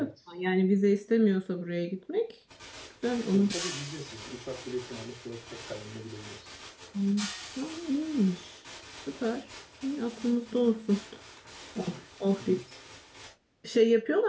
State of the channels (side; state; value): both; identical; correlation 1.00